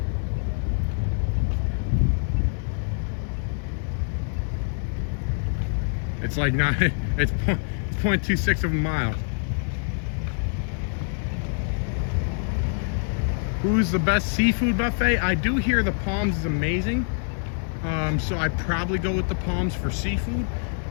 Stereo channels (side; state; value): right; silent; 61 dB below the other